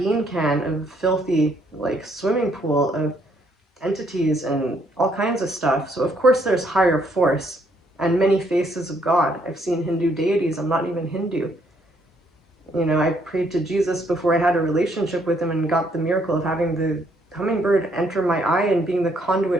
can of filthy, like, swimming pool of entities and all kinds of stuff. So of course there's higher force and many faces of God. I've seen Hindu deities. I'm not even Hindu. You know, I prayed to Jesus before I had a relationship with him and got the miracle of having the hummingbird enter my eye and being the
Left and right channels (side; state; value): both; normal; correlation 0.69